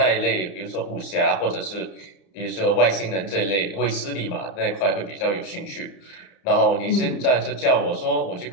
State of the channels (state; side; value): late; right; 31 ms